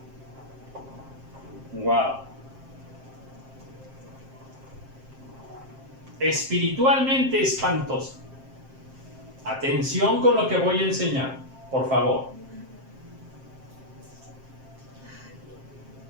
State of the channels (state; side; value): late; left; 7.6 ms